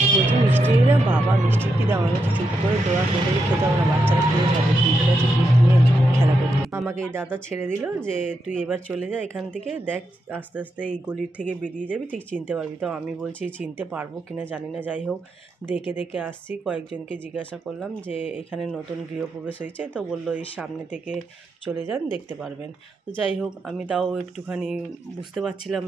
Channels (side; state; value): both; normal; correlation 0.84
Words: বলছি মিষ্টি না বাবা, মিষ্টি কি দাম? আমি চুপ করে দোয়া করে খেতে হবে না, বাচ্চারা খেয়ে যাবে। ঠিক আছে, গিফট নিয়ে খেলা করতে। আমাকে এই দাদা ছেড়ে দিল যে তুই এবার চলে যা এখান থেকে, দেখ আস্তে আস্তে এই গলির থেকে বেরিয়ে যাবি, ঠিক চিনতে পারবি। তো আমি বলছি চিনতে পারবো কিনা জানি না। যাই হোক, দেখে দেখে আসছি। কয়েকজনকে জিজ্ঞাসা করলাম যে এখানে নতুন গৃহপ্রবেশ হয়েছে, তো বললো এই সামনে থেকে চলে যান, দেখতে পারবেন। তো যাই হোক, আমি তাও একটুখানি বুঝতে পারছিলাম